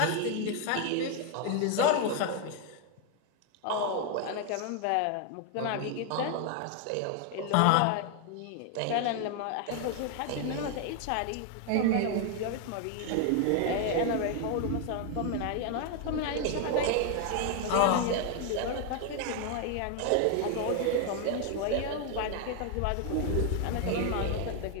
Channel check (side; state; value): both; different; correlation 0.00